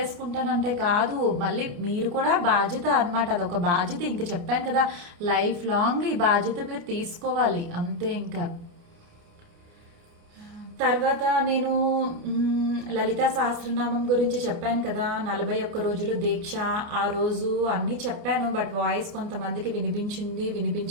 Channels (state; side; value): late; left; 29 ms